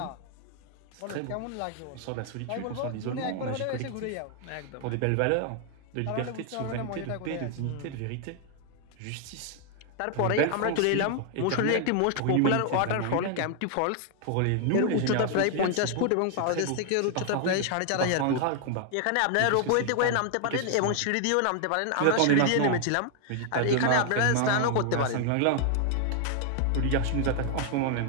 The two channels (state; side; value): different; both; correlation 0.00